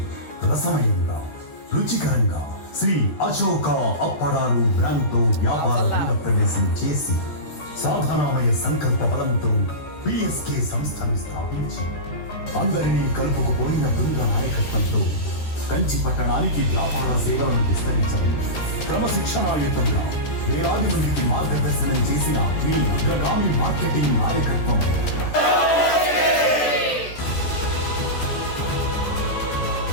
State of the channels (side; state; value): right; late; 13 ms